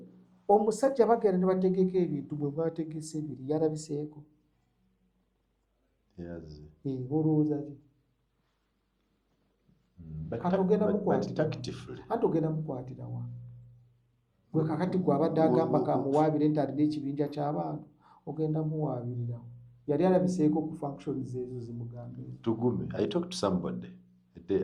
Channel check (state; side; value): identical; both; correlation 1.00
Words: omusajja bagenda ne bategeka ebintu bwe bategese ebiri yalabiseeko. Olowooza ki? Kati ogenda mukwatira wa? Gwe kakati gwe abadde agamba kamuwaabire nti alina ekibinja ky'abantu, ogenda muwaabirira wa? Yali alabiseeko ku functions ezo zimugambe. Tugume, I talked to somebody the day